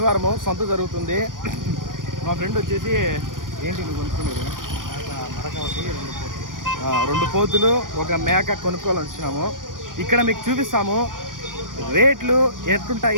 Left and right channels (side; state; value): left; late; 0.90 ms